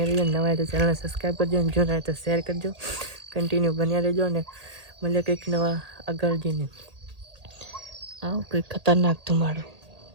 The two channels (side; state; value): left; late; 1.8 ms